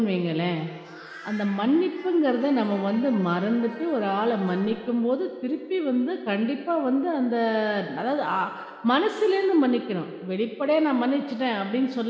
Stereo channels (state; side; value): identical; both; correlation 1.00